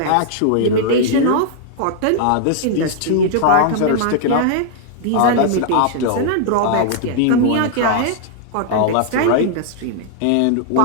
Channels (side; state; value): both; different; correlation -0.01